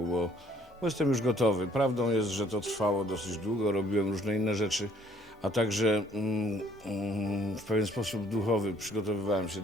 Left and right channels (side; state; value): both; normal; correlation 0.62